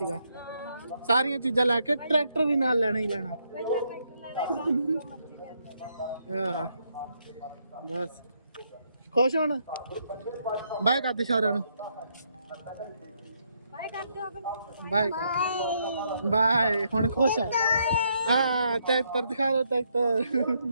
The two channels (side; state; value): both; inverted; correlation -0.75